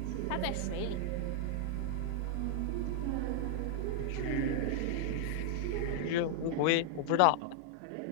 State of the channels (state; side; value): different; both; correlation -0.01